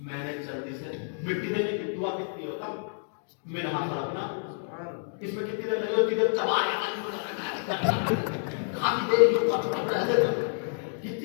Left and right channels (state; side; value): silent; right; digital silence